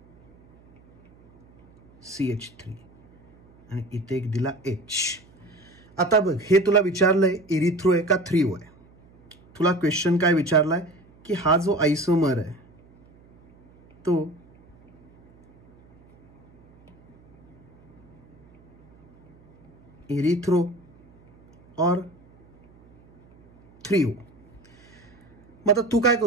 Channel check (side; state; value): right; noise; hum, 29 dB below the sound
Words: CH3, आणि इथे एक दिला H. आता बघ हे तुला विचारलंय इरिथ्रो आहे का 3O आहे. तुला क्वेश्चन काय विचारलाय की हा जो आयसोमर आहे तो इरिथ्रो और 3O. मग आता तू काय